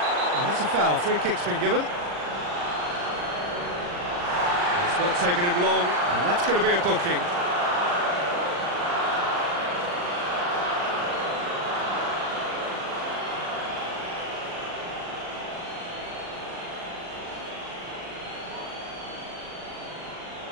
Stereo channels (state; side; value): late; left; 40 ms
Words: Oh, that's a foul, free kick's been given. Not taking him long, and that's going to be a booking.